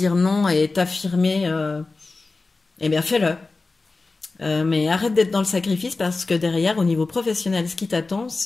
non et t'affirmer, eh bien, fais-le. Mais arrête d'être dans le sacrifice parce que derrière, au niveau professionnel, ce qui t'attend,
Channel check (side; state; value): right; quieter; 3.7 dB